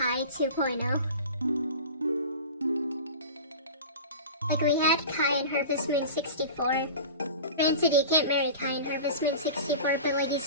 2.0. Like, we had Kai in Harvest Moon 64. Granted, you can't marry Kai in Harvest Moon 64, but, like, he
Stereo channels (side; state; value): both; inverted; correlation -0.34